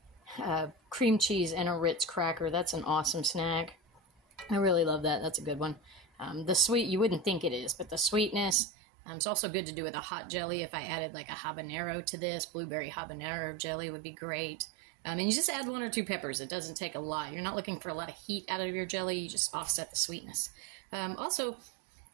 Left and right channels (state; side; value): drops out; left; at 8.6 s